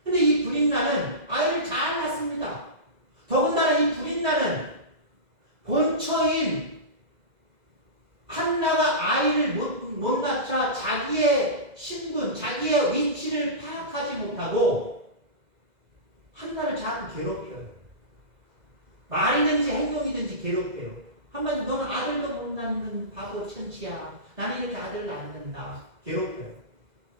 근데 이 분인나는 아이를 잘 낳습니다. 더군다나 이 분인나는 본처인 한나가 아이를 못 낳자 자기의 신분, 자기의 위치를 파악하지 못하고 한나를 자꾸 괴롭혀요. 말이든지 행동이든지 괴롭혀요. 한마디로 너는 아들도 못 낳는 바보 천치야. 나는 이렇게 아들을 낳는다. 괴롭혀요.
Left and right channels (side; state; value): left; late; 2.0 ms